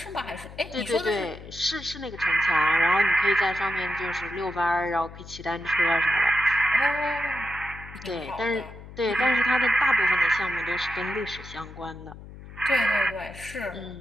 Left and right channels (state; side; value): noise; left; hum, 16 dB below the sound